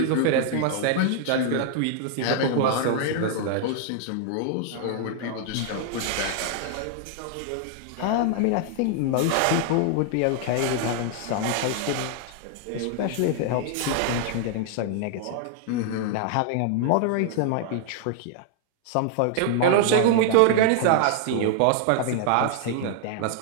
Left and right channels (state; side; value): different; both; correlation 0.00